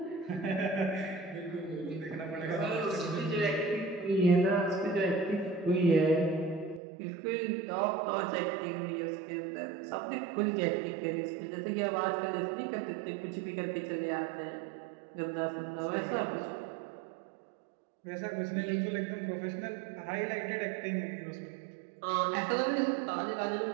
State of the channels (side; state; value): left; drops out; at 6.8 s